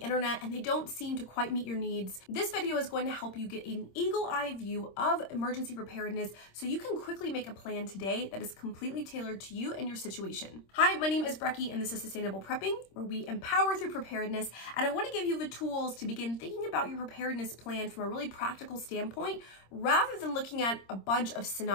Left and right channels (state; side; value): late; right; 26 ms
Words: and they don't seem to quite meet your needs? This video is going to help you get an eagle-eye view of emergency preparedness so you can quickly make a plan today that is completely tailored to you and your situation. Hi, my name is Brecky and this is Sustainable Prepping, where we empower through preparedness, and I want to give you the tools to begin thinking about your preparedness plan from a really practical standpoint rather than looking at a bunch of